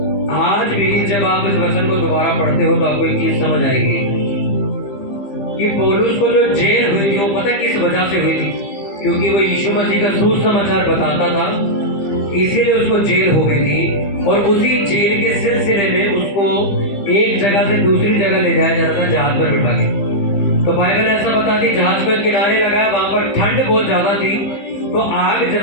आज भी जब आप इस वचन को दोबारा पढ़ते हो तो आपको एक चीज समझ आएगी कि पौलुस को जो जेल हुई थी वो पता किस वजह से हुई थी? क्योंकि वो यीशु मसीह का सुसमाचार बताता था, इसीलिए उसको जेल हो गई थी। और उसी जेल के सिलसिले में उसको एक जगह से दूसरी जगह ले जाया जाता था, जहाज पर बिठा के। तो बाइबल ऐसा बताती, जहाज पर किनारे लगाया, वहां पर ठंड बहुत ज्यादा थी, तो आग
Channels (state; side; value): late; right; 15 ms